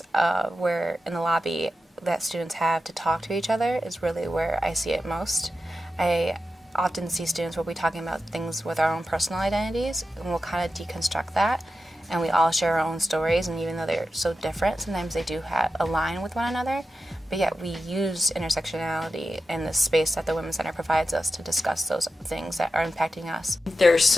where in the lobby that students have to talk to each other is really where I see it most. I often see students where we're talking about things with our own personal identities, and we'll kind of deconstruct that, and we all share our own stories, and even though they're so different, sometimes they do align with one another, but yet we use intersectionality in the space that the Women's Center provides us to discuss those things that are impacting us. There's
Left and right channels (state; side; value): normal; both; correlation 0.91